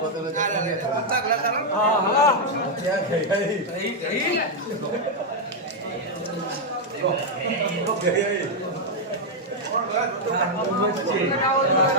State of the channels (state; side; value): normal; both; correlation -0.01